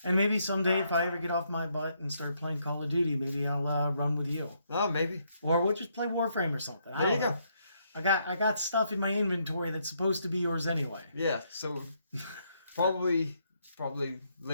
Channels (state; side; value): inverted; both; correlation -0.74